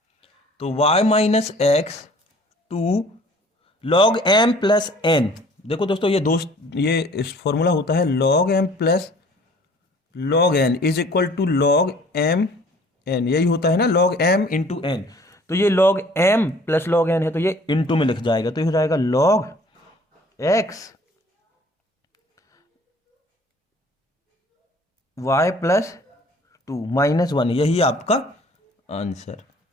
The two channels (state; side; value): normal; both; correlation 0.53